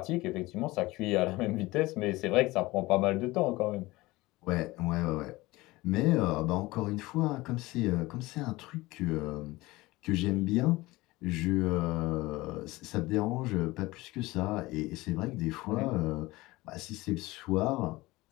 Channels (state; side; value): quieter; right; 20.3 dB